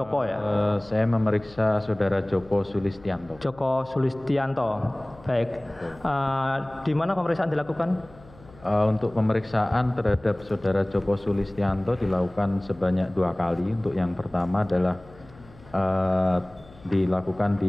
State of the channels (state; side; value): noise; left; hum, 23 dB below the sound